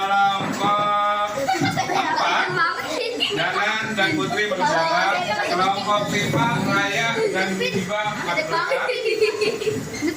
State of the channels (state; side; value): identical; both; correlation 1.00